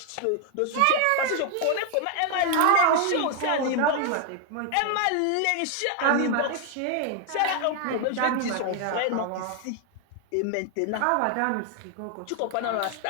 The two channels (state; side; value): different; both; correlation 0.00